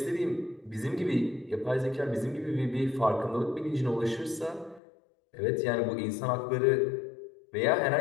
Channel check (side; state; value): right; drops out; at 4.8 s